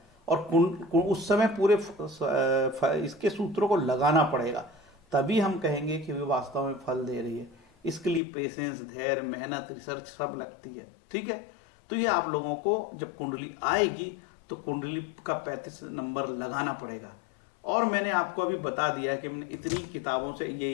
और उस समय पूरे इसके सूत्रों को लगाना पड़ेगा, तभी हम कहेंगे कि वे वास्तव में फल दे रही है। इसके लिए पेशेंस, धैर्य, मेहनत, रिसर्च सब लगती है। ठीक है, तो ये आप लोगों को जब कुंडली आएगी तो कुंडली का 35 नंबर लगाना पड़ेगा। और मैंने आपको अभी बता दिया कि मैंने इतनी किताबों से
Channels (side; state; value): right; drops out; at 8.2 s